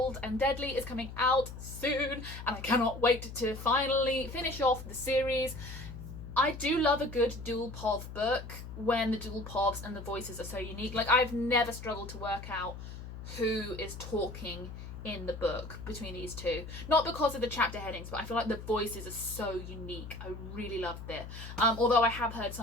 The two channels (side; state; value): left; noise; hum, 11 dB below the sound